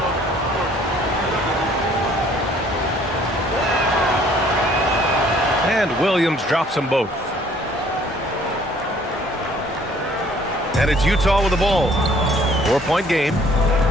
And Williams drops them both. And it's Utah with the ball. 4-point game.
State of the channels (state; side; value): normal; both; correlation 0.58